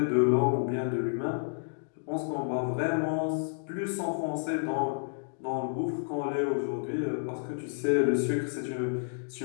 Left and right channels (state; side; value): silent; right; digital silence